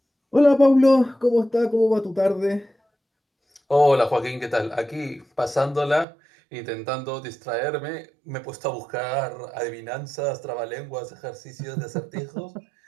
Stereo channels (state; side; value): drops out; left; at 6.1 s